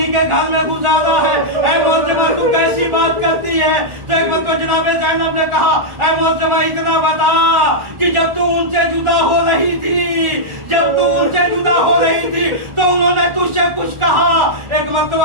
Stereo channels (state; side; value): late; left; 1.4 ms